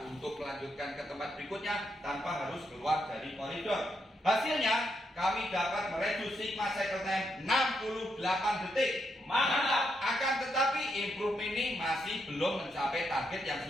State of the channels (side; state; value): both; normal; correlation 0.80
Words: untuk melanjutkan ke tempat berikutnya tanpa harus keluar dari koridor. Hasilnya, kami dapat mereduksi sigma cycle time 68 detik. Mantap. Akan tetapi improvement ini masih belum mencapai target yang